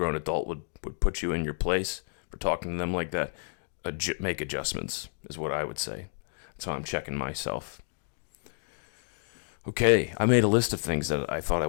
adult would put you in your place for talking to them like that, make adjustments is what I would say. So I'm checking myself. Okay, I made a list of things that I thought I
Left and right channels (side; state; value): right; silent; digital silence